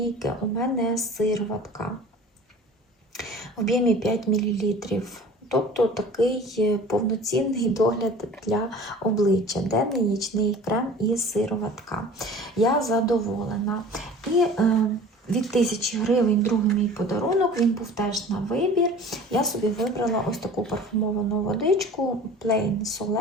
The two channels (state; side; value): normal; both; correlation 0.43